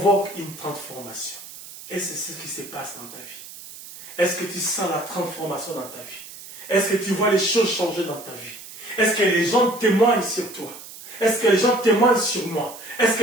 une transformation. Et c'est ce qui se passe dans ta vie. Est-ce que tu sens la transformation dans ta vie? Est-ce que tu vois les choses changer dans ta vie? Est-ce que les gens témoignent sur toi? Est-ce que les gens témoignent sur moi? Est-ce que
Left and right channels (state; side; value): noise; right; hiss, 15 dB below the sound